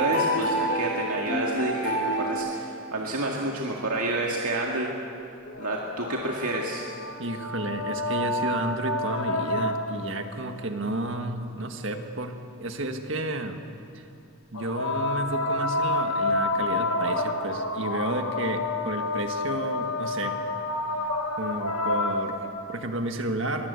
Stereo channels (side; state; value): both; normal; correlation -0.07